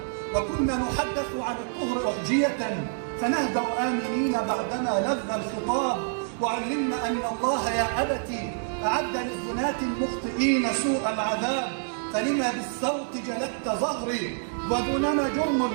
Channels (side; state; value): left; silent; digital silence